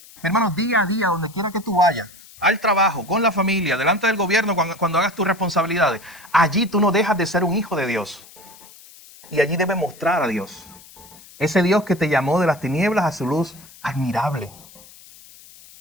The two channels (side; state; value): left; noise; hiss, 22 dB below the sound